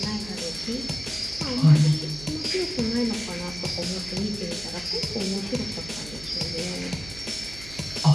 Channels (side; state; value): right; noise; hum, 16 dB below the sound